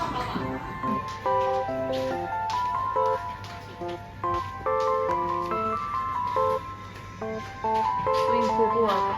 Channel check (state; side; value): identical; both; correlation 1.00